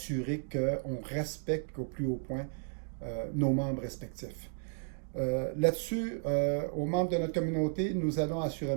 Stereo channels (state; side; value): silent; left; digital silence